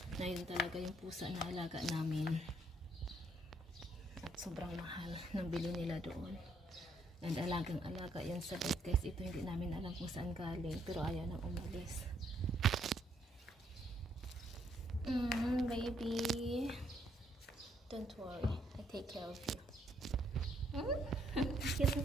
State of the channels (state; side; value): normal; both; correlation 0.71